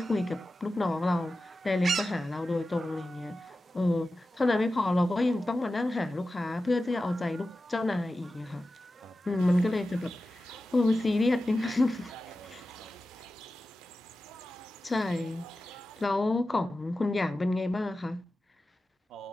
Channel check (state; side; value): normal; both; correlation 0.94